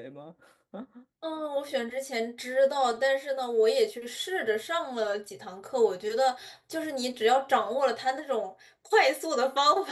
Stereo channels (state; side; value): identical; both; correlation 1.00